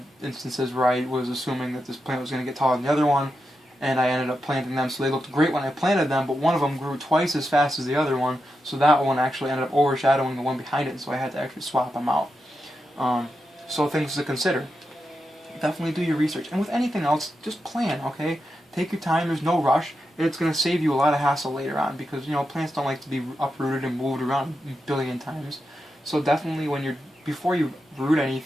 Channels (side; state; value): both; normal; correlation 0.87